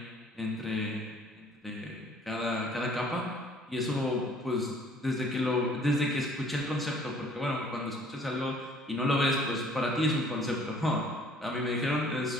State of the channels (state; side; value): normal; both; correlation 0.56